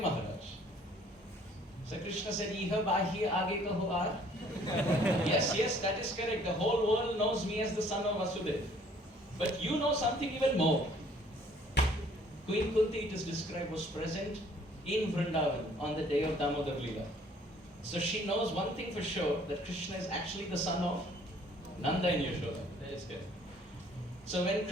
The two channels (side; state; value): both; normal; correlation 0.58